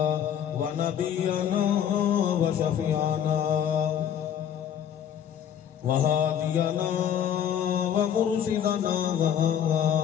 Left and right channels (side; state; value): right; quieter; 9.3 dB